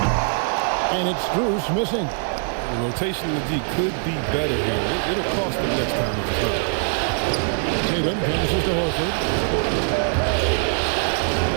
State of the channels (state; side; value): silent; left; 64 dB below the other